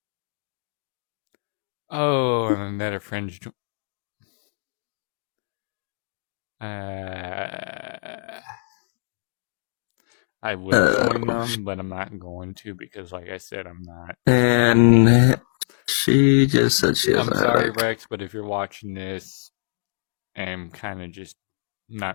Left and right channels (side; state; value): right; silent; digital silence